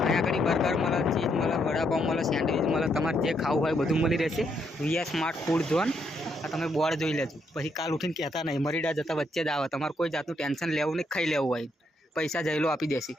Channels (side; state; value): both; normal; correlation 0.76